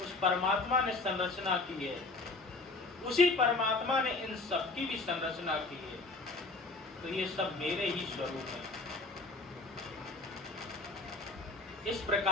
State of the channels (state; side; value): quieter; right; 3.4 dB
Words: उस परमात्मा ने संरचना की है, उसी परमात्मा ने इन सब की भी संरचना की है। तो ये सब मेरे ही स्वरूप है। इस